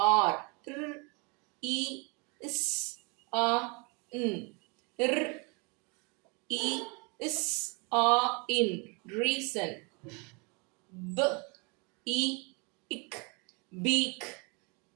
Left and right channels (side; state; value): left; quieter; 31.1 dB